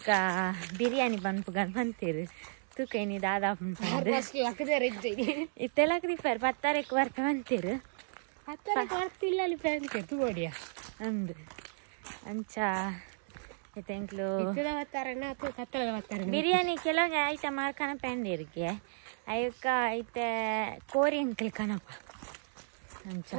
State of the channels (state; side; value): silent; left; digital silence